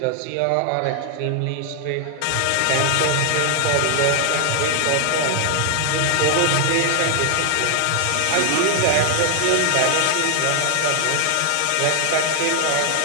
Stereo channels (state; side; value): different; both; correlation 0.00